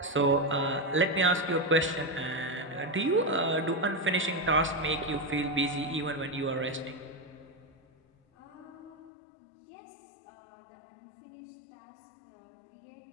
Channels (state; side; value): drops out; right; at 9.1 s